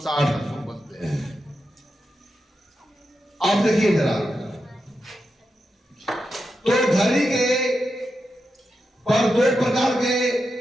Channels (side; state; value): both; normal; correlation 0.88